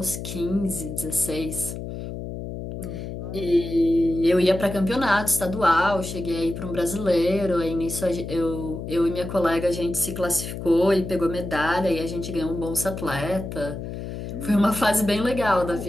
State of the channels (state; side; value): noise; left; hum, 8 dB below the sound